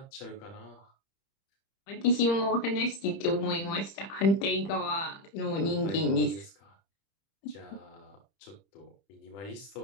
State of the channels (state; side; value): late; right; 30 ms